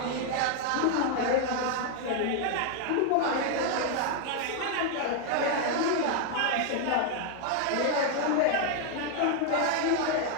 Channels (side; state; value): both; different; correlation 0.00